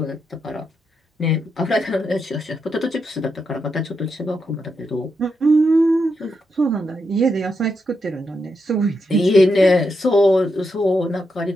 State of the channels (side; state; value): both; normal; correlation 0.83